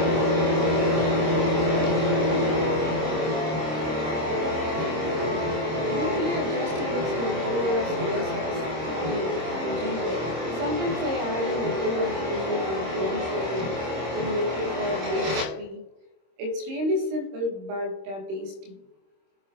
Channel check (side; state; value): left; late; 26 ms